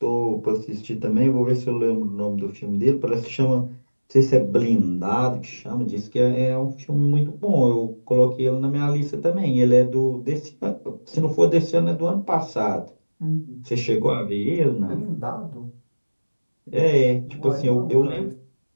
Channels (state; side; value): inverted; both; correlation -1.00